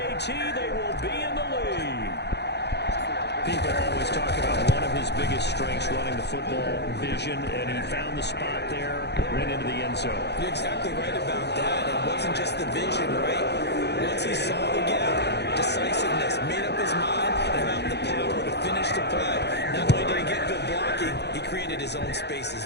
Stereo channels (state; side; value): late; right; 0.49 ms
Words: they will be in the lead. People always talk about one of his biggest strengths, running the football, vision, and he found the spot there, went into the end zone. You're exactly right about that. It wasn't just the vision, right? Once he saw the gap, decisiveness, made up his mind, and about the power to finish the play. Not only did he get good blocking, he created his own space